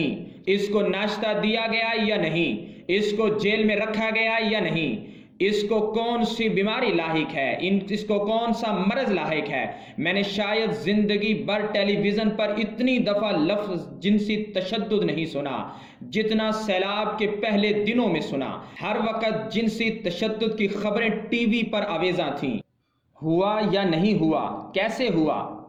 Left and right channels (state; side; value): identical; both; correlation 1.00